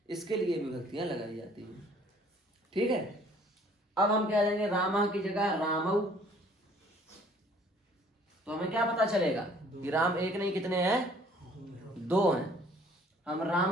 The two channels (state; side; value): normal; both; correlation 0.57